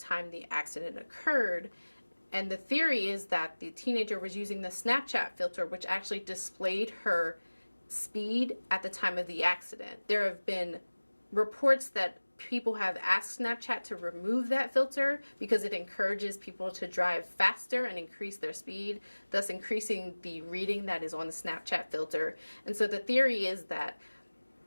the accident occurred, and the theory is that the teenager was using the Snapchat filter, which actually displayed her speed at the time of the accident. There have been reports that people have asked Snapchat to remove that filter because it encourages people to drive faster and increase their speed, thus increasing the reading that is on the Snapchat filter. And so the theory is that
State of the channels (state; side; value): inverted; both; correlation -1.00